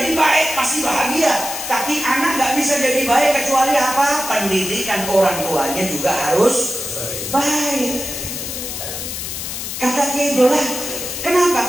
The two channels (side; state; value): left; noise; hiss, 6 dB below the sound